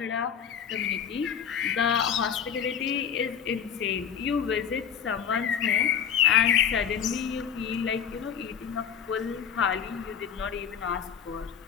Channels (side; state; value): right; quieter; 7.9 dB